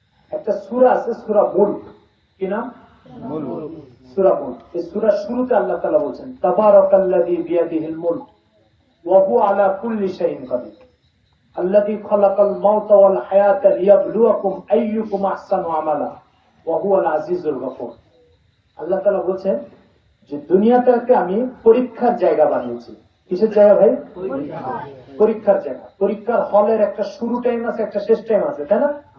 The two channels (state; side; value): identical; both; correlation 1.00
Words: একটা সূরা আছে, সূরা মুলক। কি নাম? সূরা মুলক। এই সূরার শুরুতে আল্লাহ তাআলা বলেন তাবারাকাল্লাযী বিয়াদিহিল মুলক ওয়া হুয়া আলা কুল্লি শাইইন কাদির আল্লাযী খালাকাল মাউতা ওয়াল হায়াতা লিয়াবলুয়াকুম আইয়ুকুম আহসানু আমালা ওয়া হুয়াল আজিজুল গফুর। আল্লাহ তাআলা বলেন যে দুনিয়াটাকে আমি পরীক্ষার জায়গা বানিয়েছি। কিসের জায়গা ভাই? পরীক্ষার জায়গা। পরীক্ষার হলের একটা শুরু টাইম আছে, একটা শেষ টাইম আছে, তাই না?